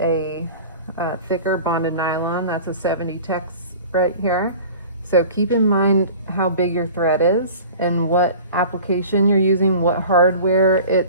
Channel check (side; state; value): both; inverted; correlation -0.41